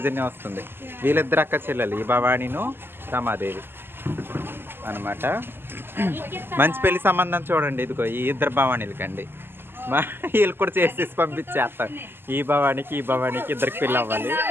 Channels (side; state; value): left; late; 0.10 ms